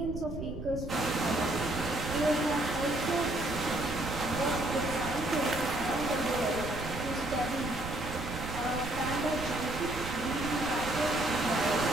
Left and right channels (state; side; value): noise; right; rumble, 8 dB below the sound